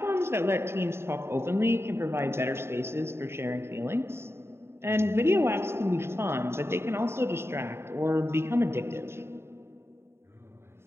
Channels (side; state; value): left; late; 0.12 ms